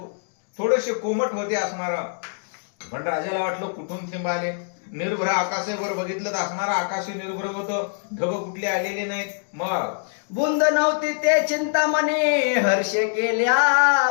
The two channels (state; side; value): silent; right; digital silence